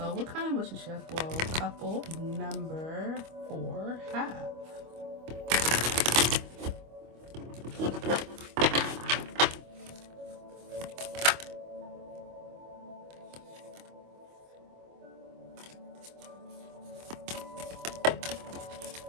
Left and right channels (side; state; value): left; late; 25 ms